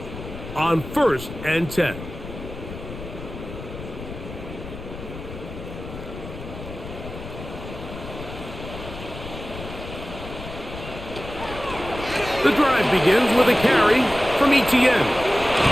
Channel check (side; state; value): left; noise; rumble, 11 dB below the sound